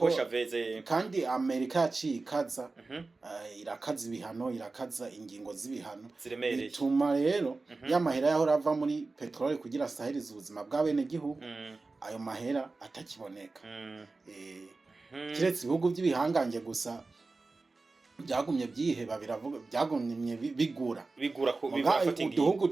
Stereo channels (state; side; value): quieter; left; 3.6 dB